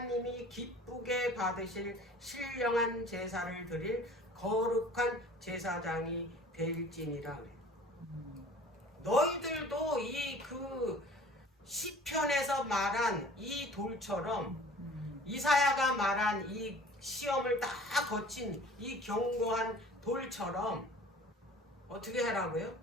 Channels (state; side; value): normal; both; correlation 0.47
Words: 기쁘게 받으실 신령한 제사를 드릴 거룩한 제사장이 될지니라. 너희들도 이 그 시편에서 말한 이 돌처럼, 이사야가 말한 이 시험을 다 거친 이 견고한 돌처럼 어떻게 하라고요?